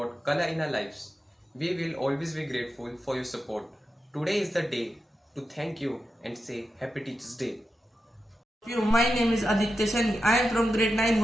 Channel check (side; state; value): both; normal; correlation 0.89